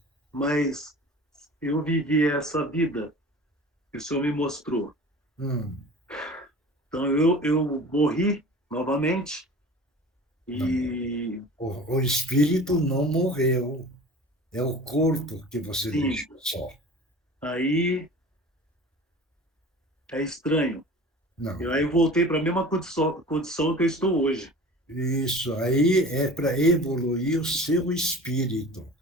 Mas eu vivi essa vida que o senhor me mostrou. Então eu morri novamente e... O espírito não morreu. É o corpo que você deixou só. Aí é estranho. Não. Aí eu voltei para a mesma condição que eu estou hoje. Isso aí é para evoluir o seu espírito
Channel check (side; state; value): both; normal; correlation 0.40